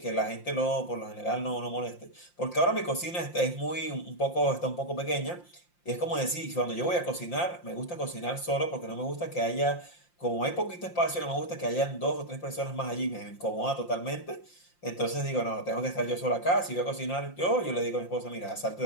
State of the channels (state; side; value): late; right; 5.7 ms